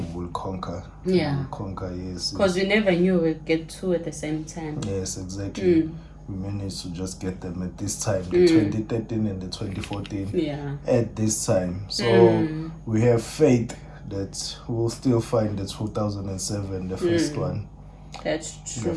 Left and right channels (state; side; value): identical; both; correlation 1.00